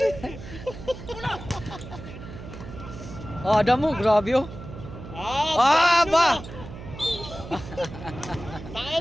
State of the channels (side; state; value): right; noise; hum, 12 dB below the sound